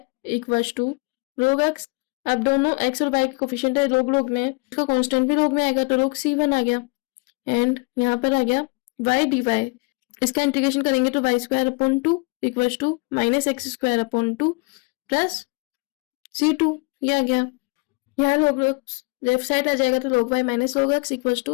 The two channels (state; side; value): quieter; right; 29.5 dB